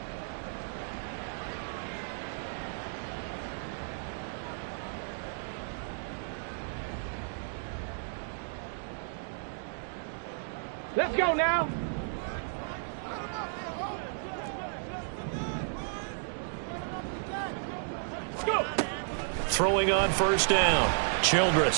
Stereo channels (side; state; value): left; silent; digital silence